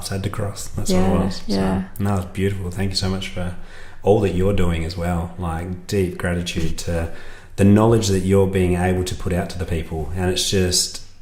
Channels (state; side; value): identical; both; correlation 1.00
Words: had to cross. That's what it was. So, no, it's beautiful. Thank you so much for all that you're doing as well. Like deep gratitude to the knowledge that you're being able to put out to the people, and it's